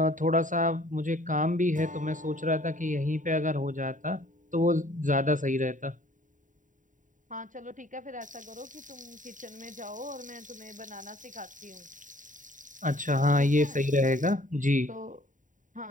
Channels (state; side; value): late; left; 0.37 ms